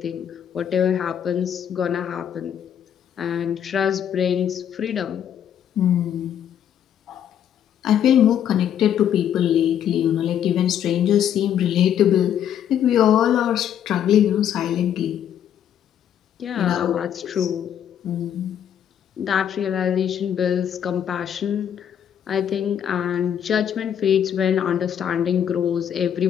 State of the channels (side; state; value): right; quieter; 9.5 dB